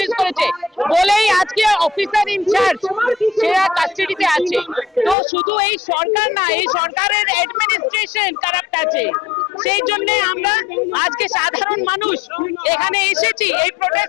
করেছে বলেই আজকে অফিসার ইনচার্জ সেরা কাস্টাডিতে আছে। তো শুধু এই সরকার না, এই সরকারের অ্যাডমিনিস্ট্রেশন কারাপ্ট আছে। সেই জন্য আমরা আজকে সাধারণ মানুষ এখানে এসেছি এই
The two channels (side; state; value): right; drops out; at 5.2 s